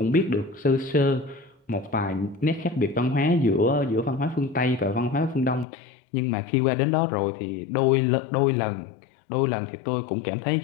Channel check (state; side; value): drops out; right; at 5.7 s